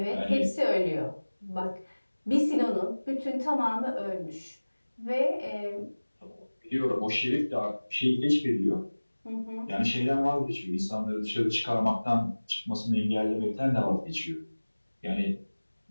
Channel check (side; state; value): both; inverted; correlation -1.00